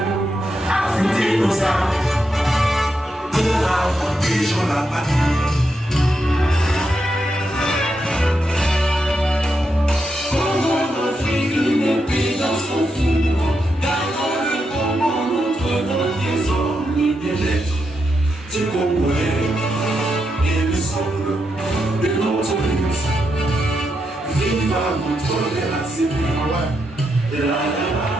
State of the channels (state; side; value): normal; both; correlation 0.83